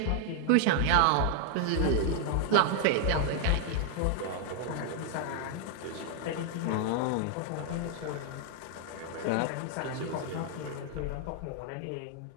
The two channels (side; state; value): both; different; correlation 0.00